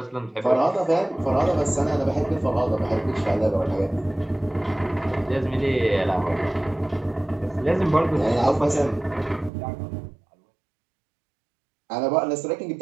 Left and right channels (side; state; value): left; drops out; at 9.5 s